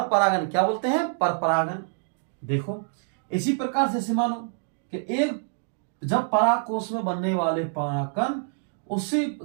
परागन। क्या बोलते हैं? पर परागन। देखो, इसी प्रकार से मानो कि एक, जब परागकोश में बनने वाले परागकण उसी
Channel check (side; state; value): left; silent; digital silence